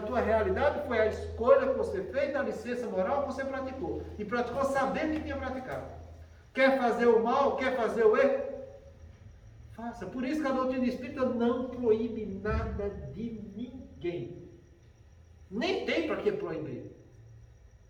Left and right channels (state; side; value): identical; both; correlation 1.00